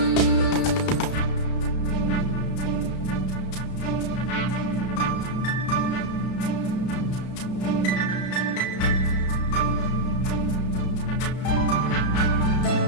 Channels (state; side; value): late; right; 33 ms